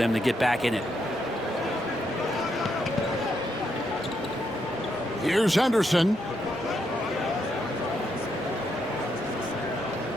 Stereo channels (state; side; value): normal; both; correlation 0.79